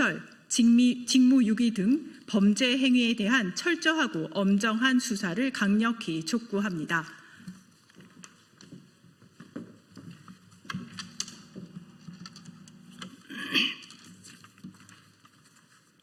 직무유기 등 범죄 행위에 대한 철저하고 엄정한 수사를 강력히 촉구합니다.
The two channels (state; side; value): identical; both; correlation 1.00